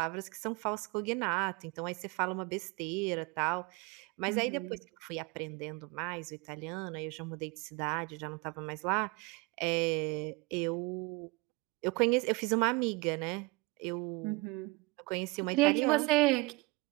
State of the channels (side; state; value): left; quieter; 25.9 dB